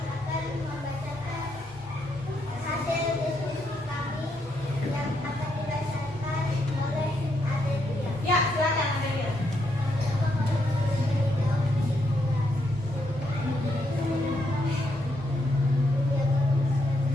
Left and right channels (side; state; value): both; normal; correlation 0.78